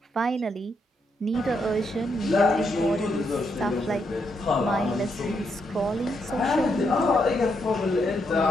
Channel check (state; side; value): normal; both; correlation 0.79